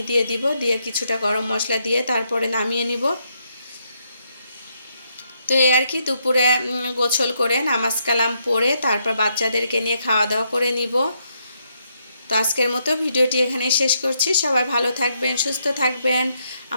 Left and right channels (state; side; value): inverted; both; correlation -0.77